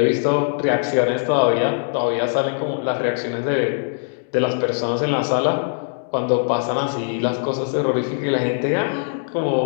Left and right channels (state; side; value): silent; right; digital silence